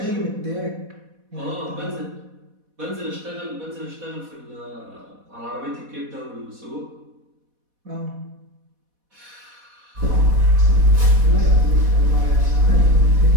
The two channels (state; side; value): late; left; 4.1 ms